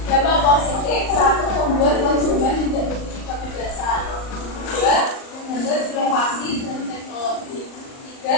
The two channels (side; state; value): right; late; 38 ms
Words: Dampak positif. 1. Membuat konsumen tidak memiliki kebebasan. 2. Menghambat inovasi dan teknologi.